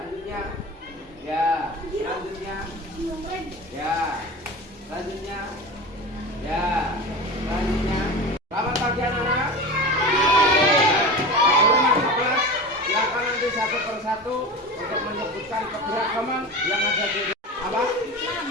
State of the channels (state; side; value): normal; both; correlation 0.30